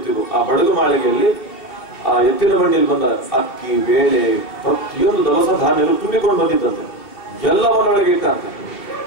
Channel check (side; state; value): right; late; 2.7 ms